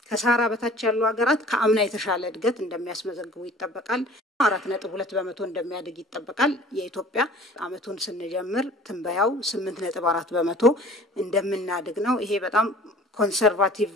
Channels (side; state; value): both; normal; correlation 0.47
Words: ከሳራ በታች ያሉ ሀገራት ከአምና የተሻለ እድገት እንደሚያስመዘግቡ ይጠበቃል። 4.2 በመቶ እንደሚያድግ ይጠበቃል። የኢትዮጵያ አመቱን ስንጀምር ትንበያው 8.4 በመቶ እንደምናድግ ነው። ይሄ በጣም ኮንሰርቫቲቭ